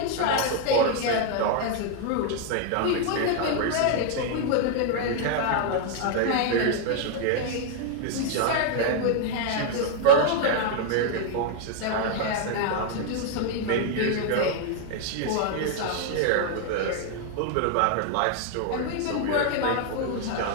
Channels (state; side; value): different; both; correlation 0.00